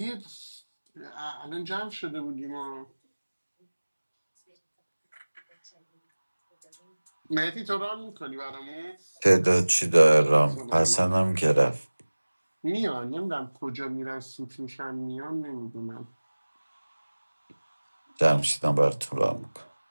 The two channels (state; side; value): inverted; both; correlation -1.00